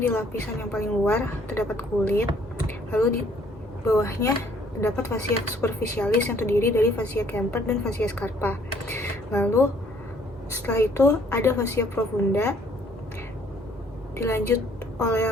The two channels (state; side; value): normal; both; correlation 0.62